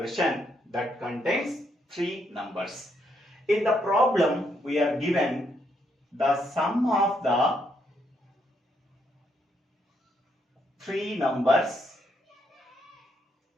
that contains three numbers. In the problem, we are given the sum of the three numbers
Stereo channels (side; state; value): both; normal; correlation 0.76